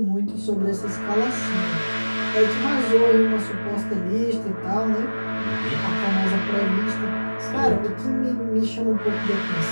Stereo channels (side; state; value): both; inverted; correlation -1.00